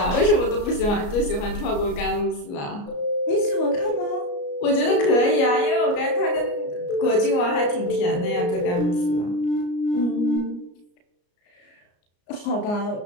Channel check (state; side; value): late; right; 34 ms